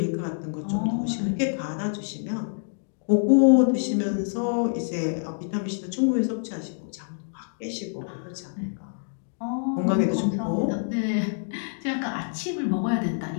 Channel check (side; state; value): right; silent; digital silence